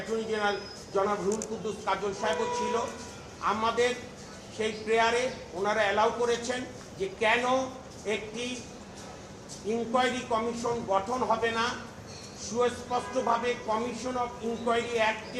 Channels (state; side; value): identical; both; correlation 1.00